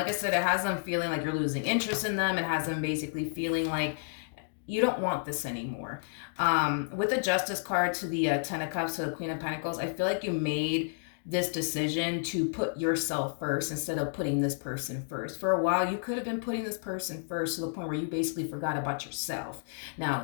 I said, it has them feeling like you're losing interest in them. It has them basically feeling like you don't want this anymore. With the Justice card to the Ten of Cups to the Queen of Pentacles, I feel like you made this decision to put yourself first instead of putting this person first. For a while, you could have been putting this person first to the point where you basically forgot about yourself.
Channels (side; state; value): right; silent; digital silence